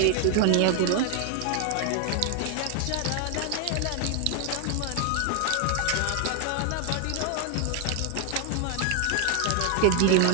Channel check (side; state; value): both; different; correlation 0.00